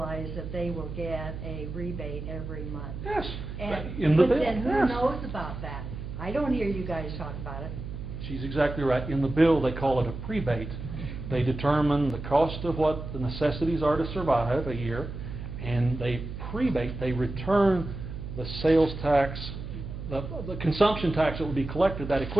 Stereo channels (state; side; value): noise; right; hum, 8 dB below the sound